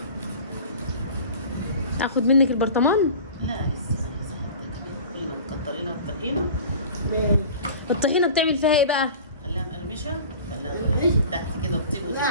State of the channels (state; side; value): inverted; both; correlation -0.40